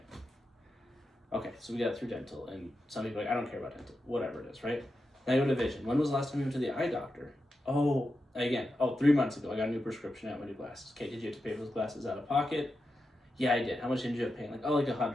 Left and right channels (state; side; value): normal; both; correlation 0.89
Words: Okay, so we got through dental, and some people are like, I don't care about dental, whatever it is, right? Now I go to vision. When was the last time you went to the eye doctor? 3 months ago, I got a new prescription, I got my new glasses. Okay, did you have to pay for those glasses out of pocket? Yeah, I did. How much did you have paying? Like